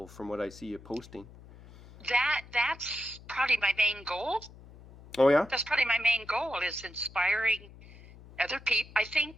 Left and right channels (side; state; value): left; noise; hum, 20 dB below the sound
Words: from what I see you posting. That's probably my main goal. Oh yeah. That's probably my main goal is inspiring other people. I